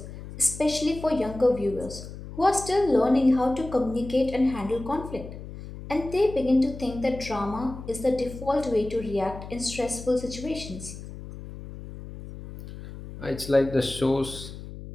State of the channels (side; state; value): left; noise; hum, 12 dB below the sound